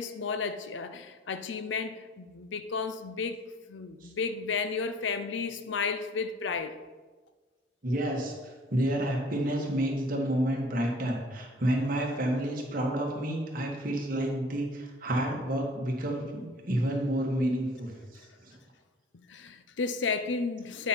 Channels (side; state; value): both; normal; correlation 0.50